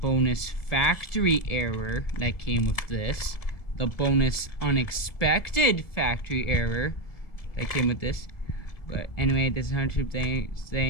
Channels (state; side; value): late; right; 1.7 ms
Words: factory error that came with this, the bonus unexpected factory error that came with this. But anyway, this is Hunter